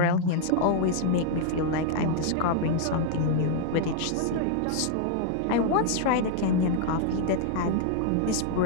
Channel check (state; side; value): different; both; correlation -0.01